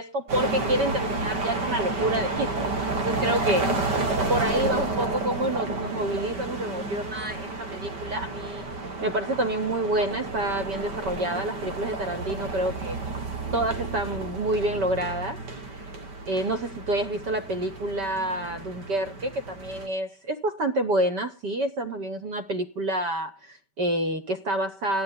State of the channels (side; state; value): left; late; 5.2 ms